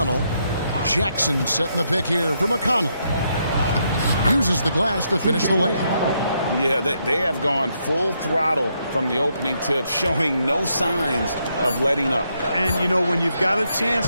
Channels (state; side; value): inverted; both; correlation -0.78